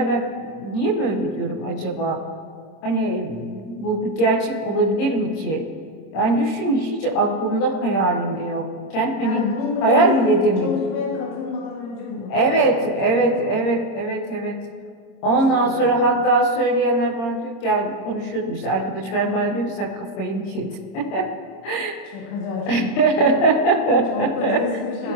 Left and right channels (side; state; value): right; late; 26 ms